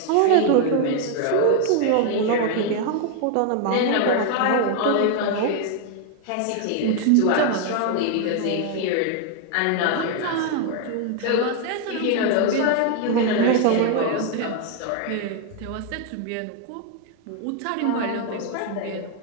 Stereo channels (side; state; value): both; different; correlation 0.00